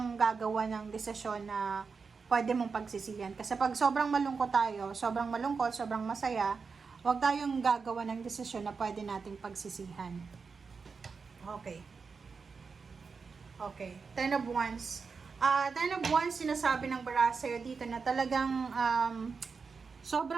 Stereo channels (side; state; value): left; quieter; 5.1 dB